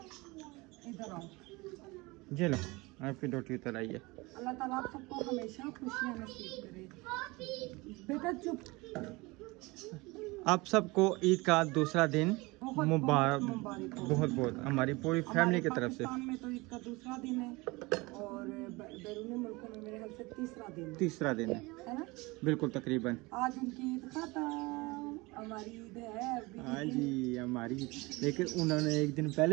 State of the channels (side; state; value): left; quieter; 23.7 dB